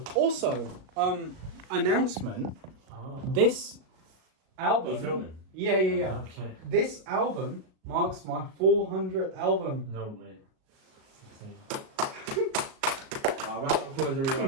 announcement. This album. You're filming? Yeah. Okay. This album marks my 400th album. No way. Round of applause,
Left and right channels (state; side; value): late; left; 37 ms